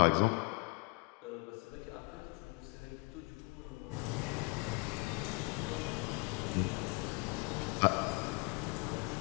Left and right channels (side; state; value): right; quieter; 29.9 dB